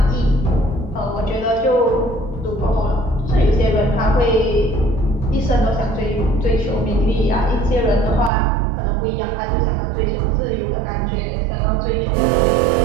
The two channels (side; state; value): left; drops out; at 8.3 s